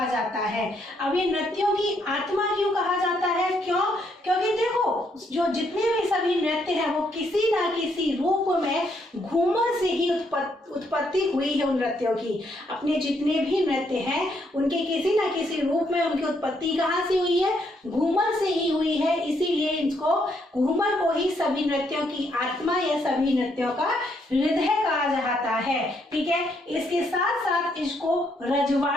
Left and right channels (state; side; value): normal; both; correlation 0.73